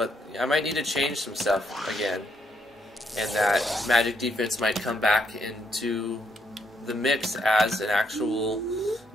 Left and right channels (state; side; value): normal; both; correlation 0.74